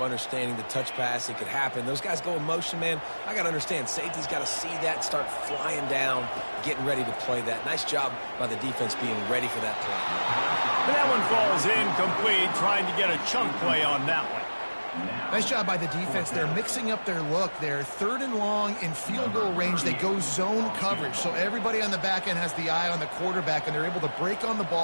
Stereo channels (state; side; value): inverted; both; correlation -1.00